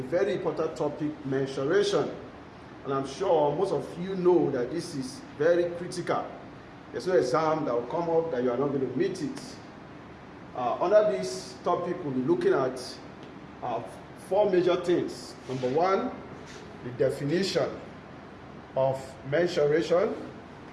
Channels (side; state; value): both; identical; correlation 1.00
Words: very important topic, mensuration, and I'm sure most of you know that this is very critical. There's no exam that will come up that you are not going to meet it. Under this topic, we'll be looking at 4 major things. Number 1, the definition of mensuration.